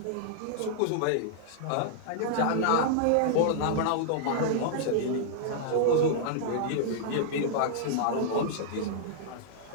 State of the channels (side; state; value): both; different; correlation -0.01